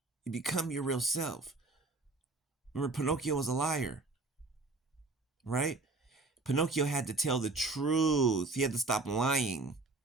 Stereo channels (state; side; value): quieter; left; 3.5 dB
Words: You become your real self. Remember, Pinocchio was a liar, right? Pinocchio had to tell the truth. He had to stop lying,